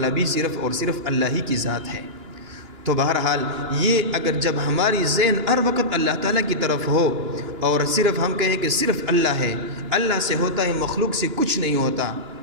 بھی صرف اور صرف اللہ ہی کی ذات ہے۔ تو بہرحال یہ اگر جب ہماری ذہن ہر وقت اللہ تعالیٰ کی طرف ہو، اور صرف ہم کہیں کہ صرف اللہ ہے، اللہ سے ہوتا ہے، مخلوق سے کچھ نہیں ہوتا،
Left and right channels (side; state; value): left; late; 2.9 ms